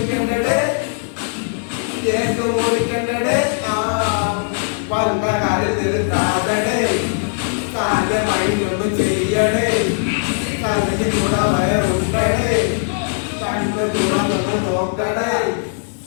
കേക്ക് പൊളിക്കണ്ടേ, വന്ന കാര്യം നിർത്താതടേ, താന്റെ മൈൻഡൊന്നും ചെയ്യടേ, തകഞ്ഞു കൂടെ വയറുണ്ടടേ, കണ്ണ് തുറന്നൊന്ന് നോക്കണേ,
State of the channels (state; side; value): silent; right; digital silence